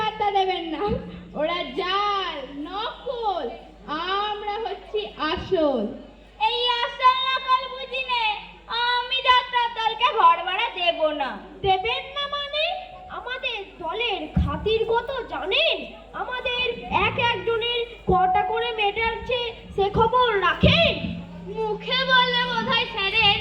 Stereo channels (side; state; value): both; identical; correlation 1.00